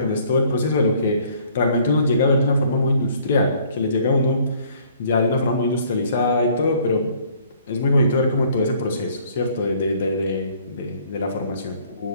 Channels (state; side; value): inverted; both; correlation -0.60